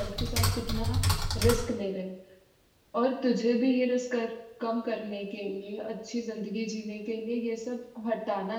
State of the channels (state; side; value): identical; both; correlation 1.00